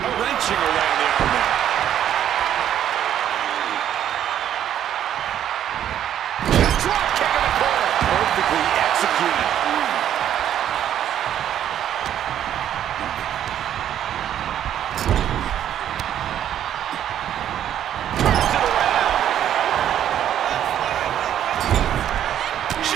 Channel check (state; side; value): quieter; left; 10.5 dB